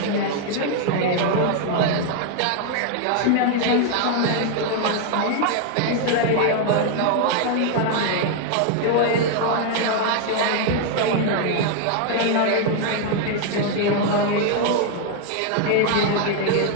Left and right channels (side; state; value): both; different; correlation 0.00